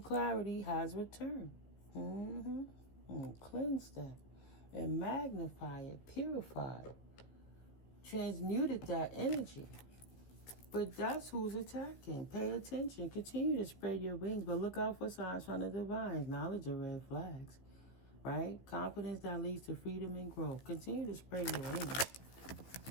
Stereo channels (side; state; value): right; late; 15 ms